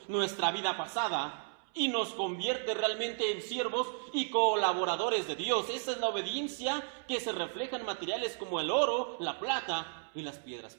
nuestra vida pasada. Y nos convierte realmente en siervos y colaboradores de Dios. Esa es la obediencia que se refleja en materiales como el oro, la plata y las piedras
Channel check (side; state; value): left; silent; 55 dB below the other